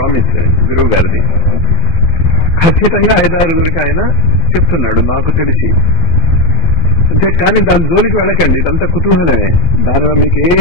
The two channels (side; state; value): right; late; 12 ms